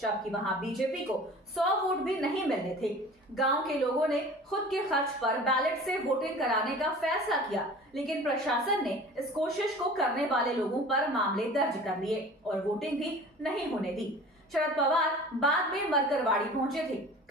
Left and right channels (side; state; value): both; normal; correlation 0.42